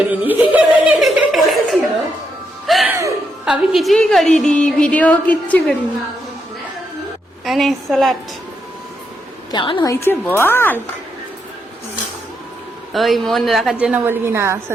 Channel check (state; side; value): normal; both; correlation 0.80